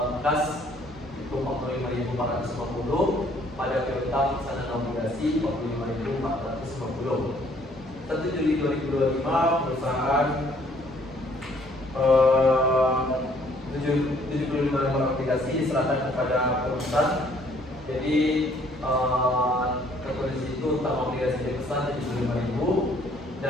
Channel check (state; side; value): normal; both; correlation 0.62